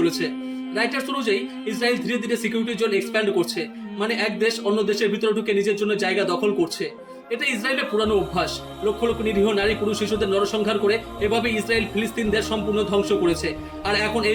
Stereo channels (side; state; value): both; identical; correlation 1.00